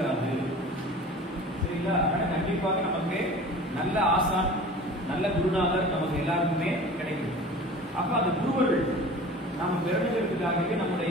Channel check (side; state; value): both; normal; correlation 0.40